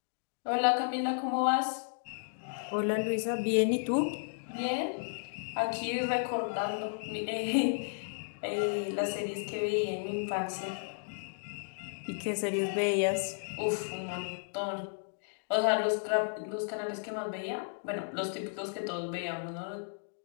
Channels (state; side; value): silent; right; digital silence